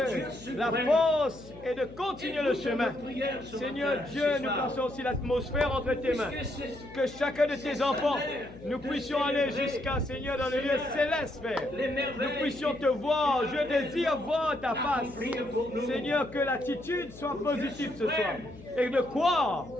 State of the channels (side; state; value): left; noise; hum, 18 dB below the sound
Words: Dieu suprême. la force et de continuer le Écoute chemin. nos prières ce Seigneur matin, Dieu, ce nous soir. plaçons aussi l'atmosphère entre tes mains. Puisque c'est- Que chacun de c'est tes enfants, salaire nous de puissions aller célébrer, jusqu'à, Seigneur, dans le lieu Seigneur, céleste, Père. les merveilles Nous puissions qui- te voir. qui Je désire voir ta face. accomplir pour nous. Seigneur, que l'attitude soit positive ce soir. suprême. Et de croire,